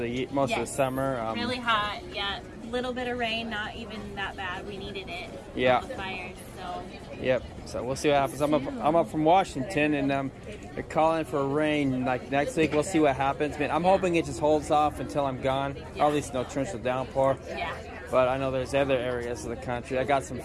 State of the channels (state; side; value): identical; both; correlation 1.00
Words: the summer. Really hot. Yeah. Little bit of rain, not even that bad. We needed it. Yeah. The fires. So. Yep. So we'll see what happens. I'm up from Washington, and they're calling for rain like next week. We'll see what happens. Man, I'm hoping it just holds off until I'm gone. Or at least no torrential downpour. Yeah. But I know there's other areas of the country. I got some